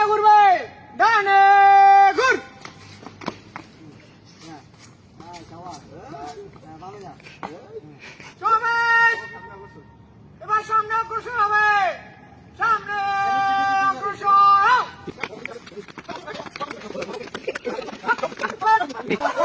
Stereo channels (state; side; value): identical; both; correlation 1.00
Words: ঘুরবে। ডানে ঘুর। সমাবেশ এবার সামনে অগ্রসর হবে। সামনে অগ্রসর হও।